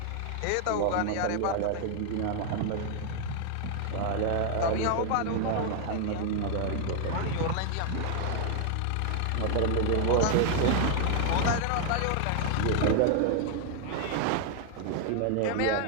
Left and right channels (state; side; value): different; both; correlation 0.00